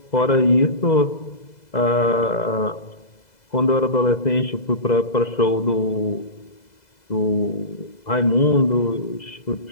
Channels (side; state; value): right; late; 2.0 ms